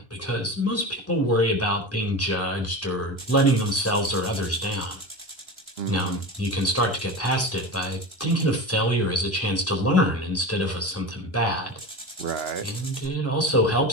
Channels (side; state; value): both; normal; correlation 0.27